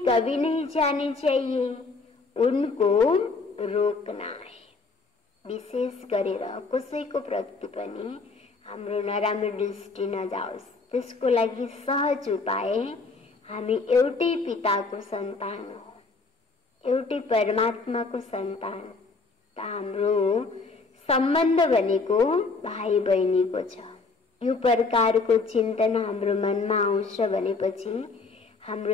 कभी नहीं जानी चाहिए, उनको रोकना है। विशेष गरेर कसैको प्रति पनि हाम्रो नराम्रो दृष्टि नजाओस्, त्यसको लागि सहज उपाय हामी एउटै पिताको सन्तान हो, एउटै परमात्माको सन्तान। त हाम्रो सम्बन्ध भनेको भाइ बहिनीको छ। यो प्रकारको चिन्तन हाम्रो मनमा आउँछ भनेपछि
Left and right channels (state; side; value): quieter; right; 4.1 dB